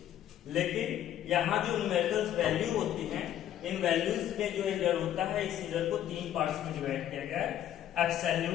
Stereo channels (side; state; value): right; quieter; 11.4 dB